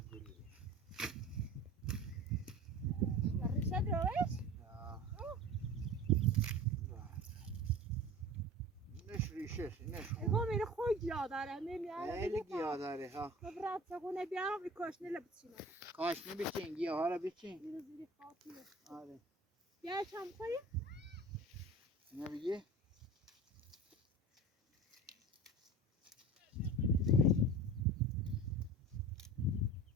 ریشه دروش اینش ریشه اینش اگه میره خوی گیا داره نمیاره خیلی گیاه داره ها ببرد چقونه بیارم این کاشنه لبچینه کاشنه بچین گیاه ها رو بچین میره زیری خاطیه آره بیا چم خویی اینو بگی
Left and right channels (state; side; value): normal; both; correlation 0.38